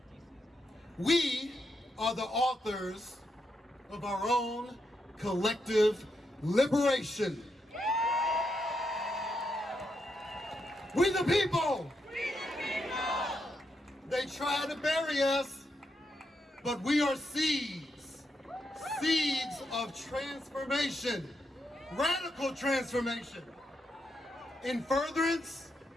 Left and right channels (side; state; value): both; normal; correlation 0.82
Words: We are the authors of our own collective liberation. We the people! We the people! They try to bury us, but we are seeds. Seeds of transformation. Radical transformation. In furtherance